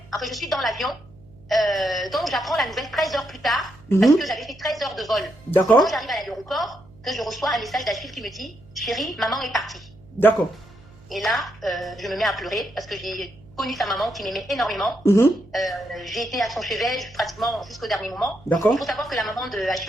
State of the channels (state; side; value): noise; right; hum, 24 dB below the sound